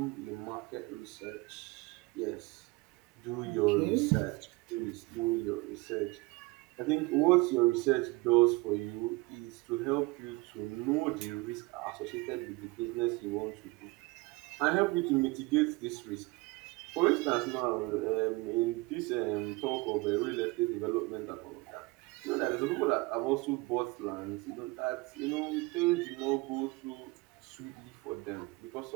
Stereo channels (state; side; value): quieter; left; 24.0 dB